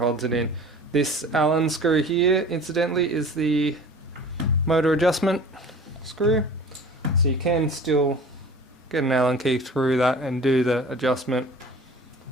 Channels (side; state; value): both; normal; correlation 0.43